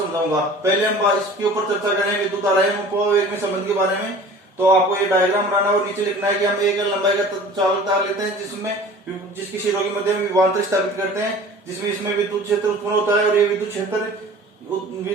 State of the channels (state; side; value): normal; both; correlation 0.44